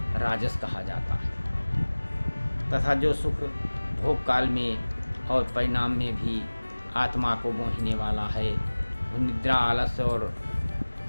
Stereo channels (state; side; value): inverted; both; correlation -1.00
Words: राजस कहा जाता है। तथा जो सुख भोग काल में और परिणाम में भी आत्मा को मोहने वाला है, वह निद्रा, आलस्य और